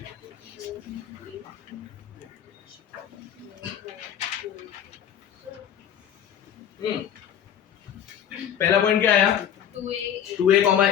पहला पॉइंट क्या आया 2a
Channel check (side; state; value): right; quieter; 9.5 dB